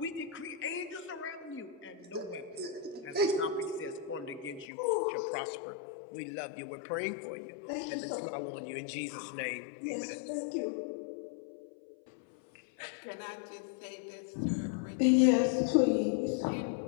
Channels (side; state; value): right; drops out; at 4.7 s